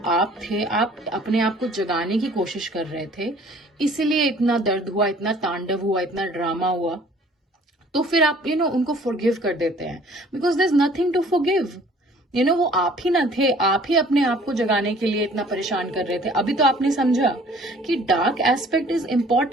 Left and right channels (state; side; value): normal; both; correlation 0.53